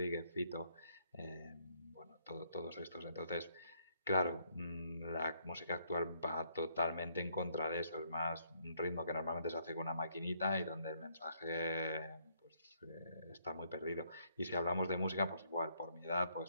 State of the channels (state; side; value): inverted; both; correlation -0.71